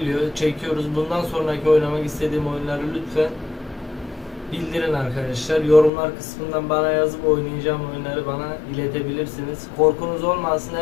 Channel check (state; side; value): drops out; right; at 5.9 s